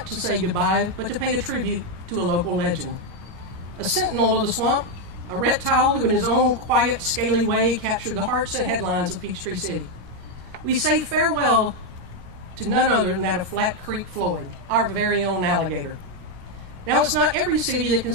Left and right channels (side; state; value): left; late; 17 ms